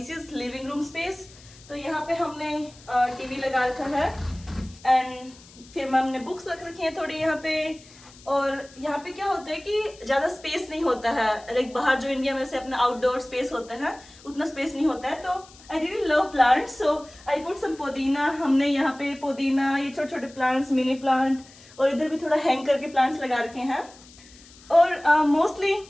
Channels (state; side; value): noise; left; hiss, 23 dB below the sound